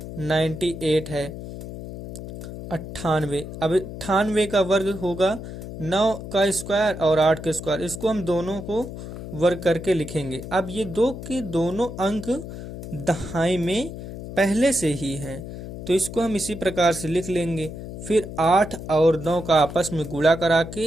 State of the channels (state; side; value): noise; left; hum, 10 dB below the sound